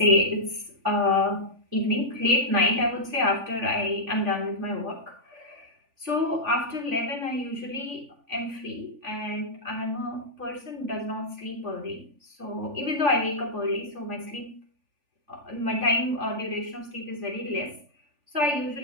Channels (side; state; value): left; late; 3.5 ms